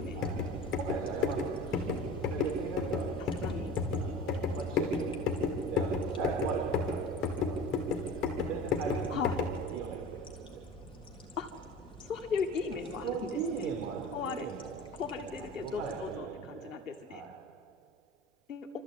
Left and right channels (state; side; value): normal; both; correlation 0.37